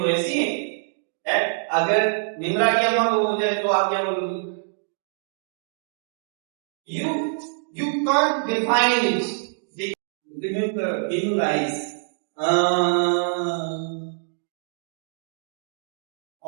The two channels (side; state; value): left; silent; digital silence